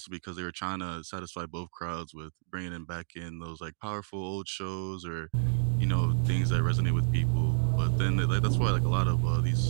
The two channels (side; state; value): left; silent; digital silence